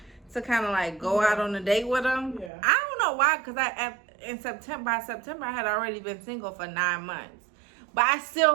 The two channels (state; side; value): drops out; left; at 2.5 s